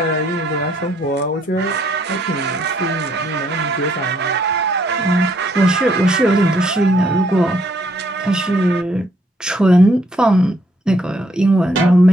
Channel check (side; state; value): both; normal; correlation 0.69